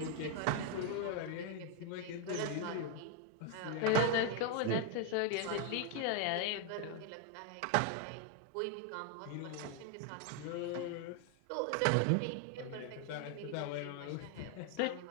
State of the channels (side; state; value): both; different; correlation 0.00